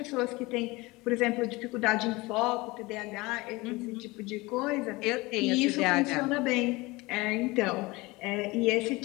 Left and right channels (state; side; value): quieter; right; 22.5 dB